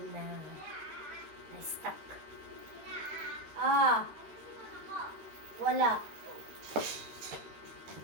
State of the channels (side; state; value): left; late; 13 ms